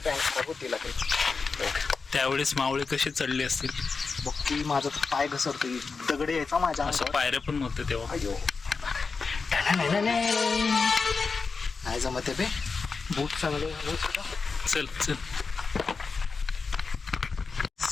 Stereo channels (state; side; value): quieter; right; 4.7 dB